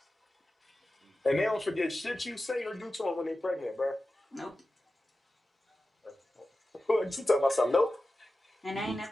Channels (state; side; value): normal; both; correlation 0.94